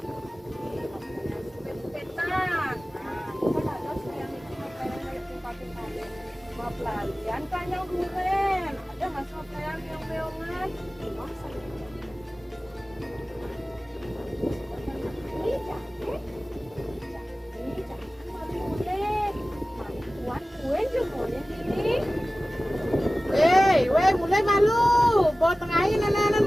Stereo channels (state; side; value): normal; both; correlation 0.97